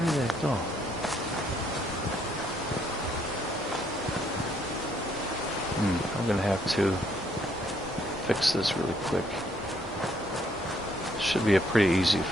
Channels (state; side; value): normal; both; correlation 0.69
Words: that go? I'm gonna have to fix this really quick. Should be a pretty easy